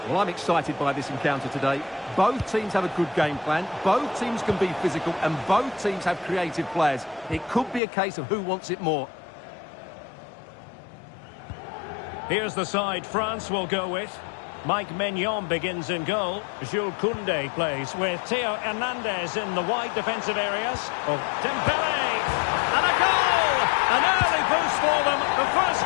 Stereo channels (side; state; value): right; drops out; at 7.8 s